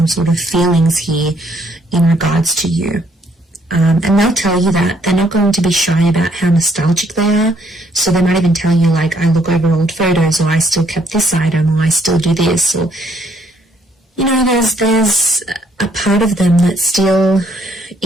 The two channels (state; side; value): normal; both; correlation 0.68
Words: sort of feelings here in regards to you. And they'll tell you that. They're not going to be shy about how nostalgic they are. So they might even tell you, like, I look over old photos, or I still kept this item, or I still do this, or, you know, there's a part of them that still